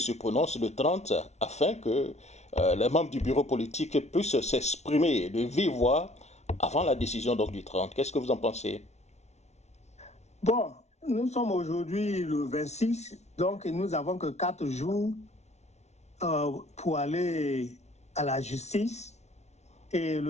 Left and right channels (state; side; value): late; right; 0.32 ms